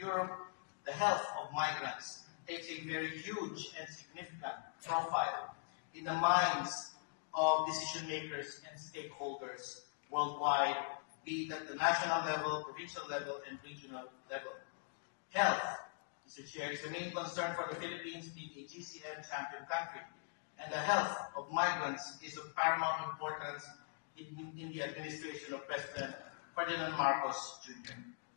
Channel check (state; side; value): silent; right; digital silence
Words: the health of migrants takes a very huge and significant profile in the minds of decision makers and stakeholders worldwide, be it at the national level, provincial level, and regional level. Health, Mr. Chair, is a main concern for the Philippines being a GCM champion country, and the health of migrants is of paramount importance in the administration of President Ferdinand Marcos Jr.